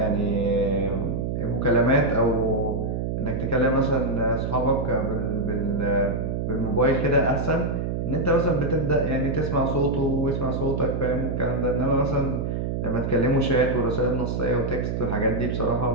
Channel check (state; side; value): noise; right; hum, 1 dB below the sound